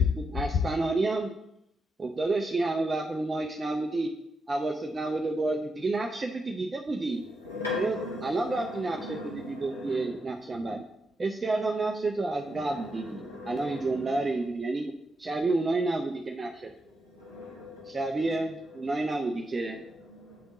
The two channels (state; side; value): normal; both; correlation 0.84